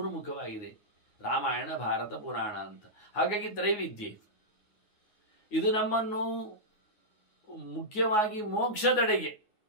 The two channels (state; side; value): late; right; 9.5 ms